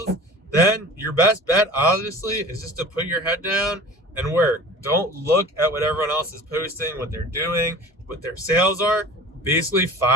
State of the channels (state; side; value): normal; both; correlation 0.40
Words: then your best bet, obviously, is just to put your head down and work. Don't look at what everyone else is posting, what they're doing, what their sales are. Basically